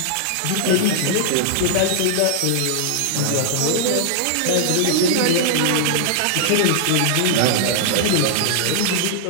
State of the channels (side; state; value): both; different; correlation -0.01